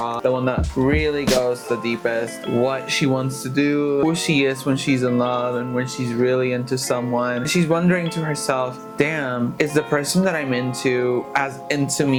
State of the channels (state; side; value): identical; both; correlation 1.00